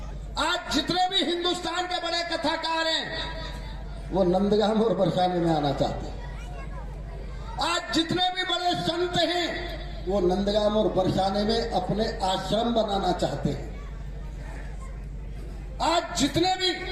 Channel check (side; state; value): both; identical; correlation 1.00